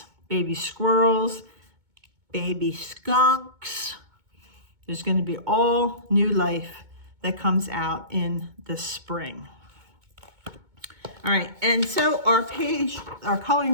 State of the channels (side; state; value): left; late; 2.2 ms